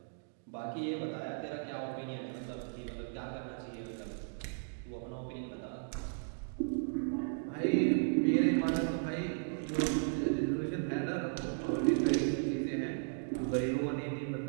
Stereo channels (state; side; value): silent; left; digital silence